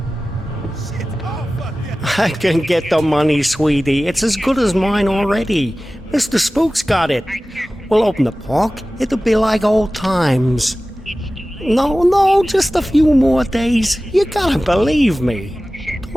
I can get the money, sweetie. It's as good as mine already. Mr. Spook's got it. We'll open the park. It'll be like old times. No, just a few more days. You gotta believe me.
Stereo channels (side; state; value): both; normal; correlation 0.96